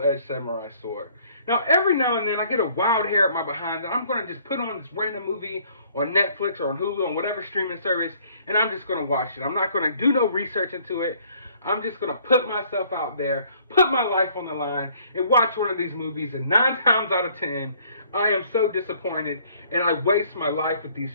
samurai sword. Now, every now and then, I get a wild hair at my behind that I'm going to just put on this random movie on Netflix or on Hulu, on whatever streaming service, and I'm just going to watch it. I'm not going to do no research into it. I'm just going to put myself out there, put my life on the line, and watch one of these movies. And 9 times out of 10, I am so disappointed, and I waste my life with these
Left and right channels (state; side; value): inverted; both; correlation -0.60